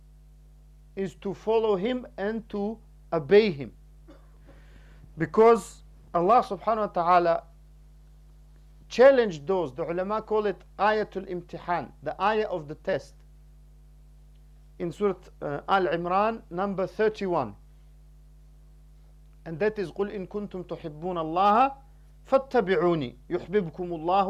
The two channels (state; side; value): identical; both; correlation 1.00